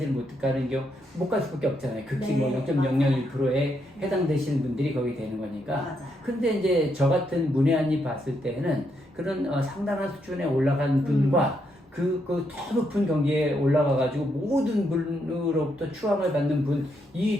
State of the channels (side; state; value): both; normal; correlation 0.78